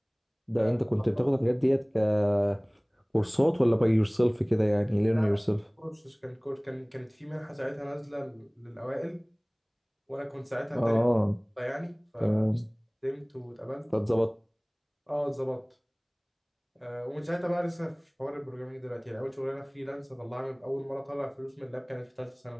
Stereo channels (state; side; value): identical; both; correlation 1.00